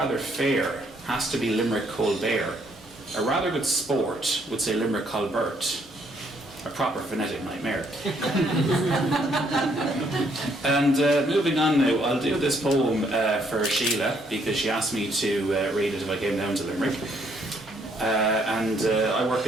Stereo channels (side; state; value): both; normal; correlation 0.69